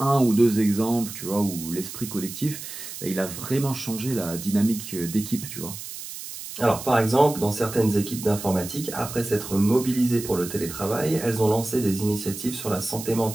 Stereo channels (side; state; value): right; noise; hiss, 10 dB below the sound